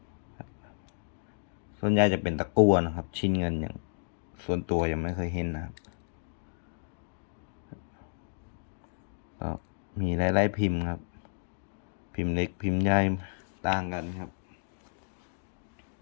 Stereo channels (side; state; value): right; silent; digital silence